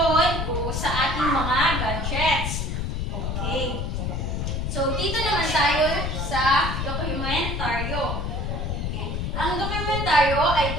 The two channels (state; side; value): noise; left; rumble, 2 dB below the sound